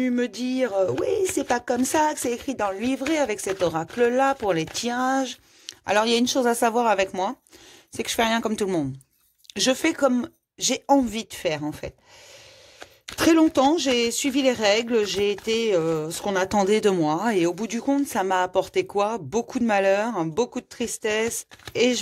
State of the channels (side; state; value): both; identical; correlation 1.00